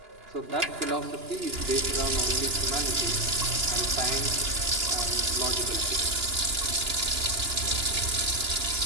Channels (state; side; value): late; left; 2.9 ms